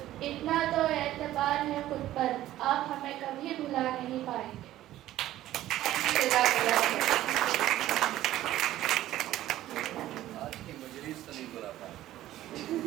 इतना तो एतबार है खुद पर, आप हमें कभी भुला नहीं पाएंगे। आज की मजलिस तो नहीं बुला पाए।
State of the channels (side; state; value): left; quieter; 14.1 dB